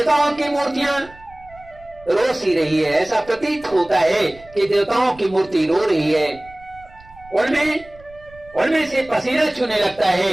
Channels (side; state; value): right; noise; rumble, 23 dB below the sound